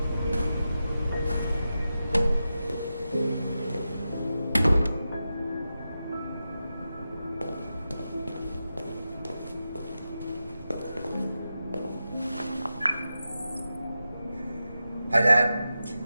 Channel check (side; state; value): both; inverted; correlation -0.91